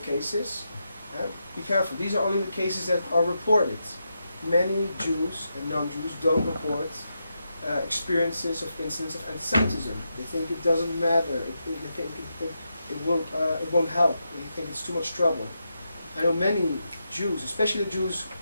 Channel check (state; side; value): inverted; both; correlation -0.85